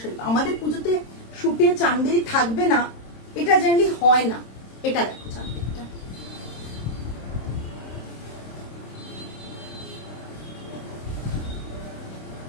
আমাদের পুজোতে শুটে চান্দেরি থাকবে না, এটা জেনারেলি হয় না, এটা দেখো চাঁদেরটা,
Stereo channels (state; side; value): late; right; 26 ms